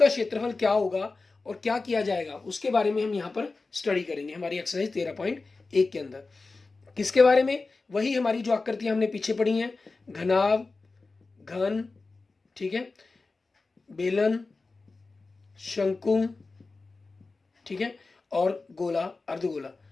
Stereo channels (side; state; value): right; quieter; 3.8 dB